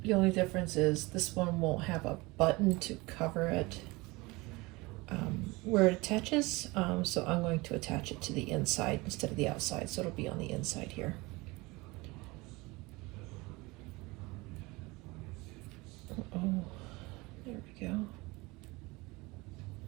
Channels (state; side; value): quieter; left; 23.4 dB